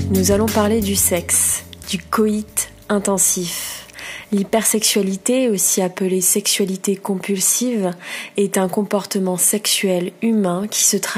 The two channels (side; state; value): both; identical; correlation 1.00